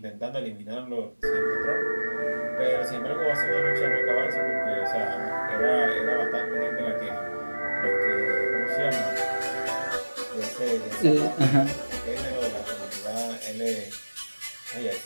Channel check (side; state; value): both; inverted; correlation -1.00